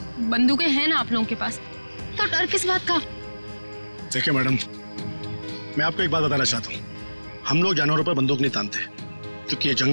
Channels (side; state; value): both; inverted; correlation -1.00